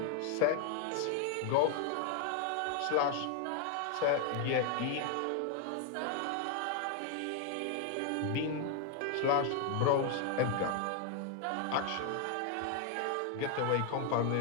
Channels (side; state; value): both; different; correlation 0.00